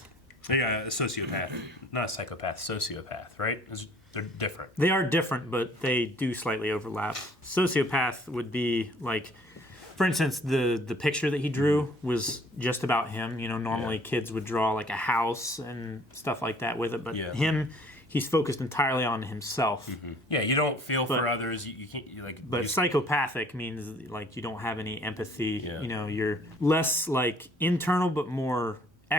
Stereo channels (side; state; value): both; normal; correlation 0.56